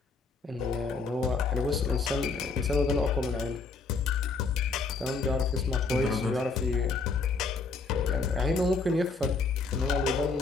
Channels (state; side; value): quieter; right; 4.2 dB